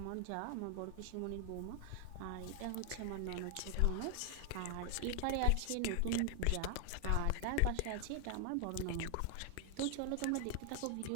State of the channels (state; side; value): different; both; correlation 0.00